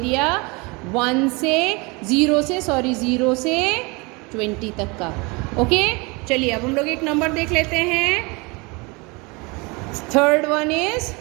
0 से 20 तक का। ओके चलिए, अब हम लोग एक नंबर देख लेते हैं। थर्ड वन इज,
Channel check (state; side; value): quieter; left; 27.4 dB